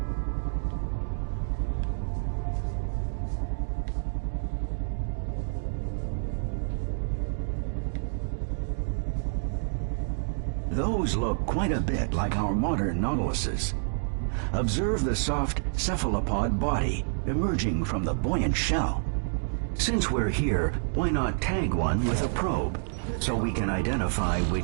Those look quite a bit like our modern nautiluses. Observe the soft cephalopod body emerging from the buoyant shell. Since we're here, why not tag one with a probe, so we can identify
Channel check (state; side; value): silent; left; digital silence